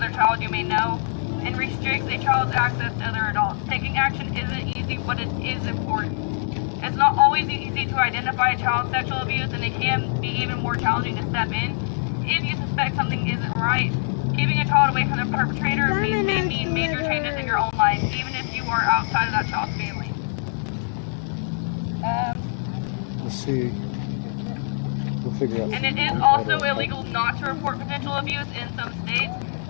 child you may know, and restricts a child's access to other adults. Taking action isn't easy, but it is important. It's not always easy to identify a child's sexual abuse, and it can be even more challenging to step in. If you suspect something isn't right, keeping a child away from the perpetrator may mean major changes in your own life, even if you are outside of that child's family. We'll see. We'll figure out. And it is also illegal not to report potential abuse in some states.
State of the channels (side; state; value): right; silent; 60 dB below the other